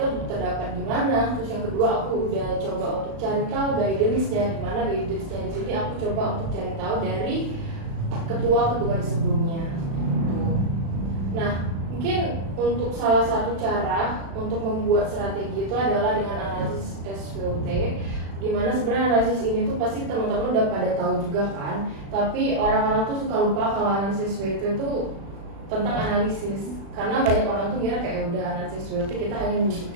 itu terdapat di mana. Terus yang kedua aku udah coba untuk cari tahu guidance-nya di mana. Guidance-nya di sini aku coba untuk cari tahu dari ketua-ketua di sebelumnya. Nah, mungkin untuk salah satu cara untuk membuat strategi itu adalah dengan analisis SWOT, dimana sebenarnya analisis ini tuh pasti teman-teman udah pada tahu juga kan, tapi orang-orang tuh suka lupa kalau analisis SWOT itu tentang analisis, karena banyak orang tuh kira kayak udah analisis SWOT kita hanya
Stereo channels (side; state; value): left; late; 36 ms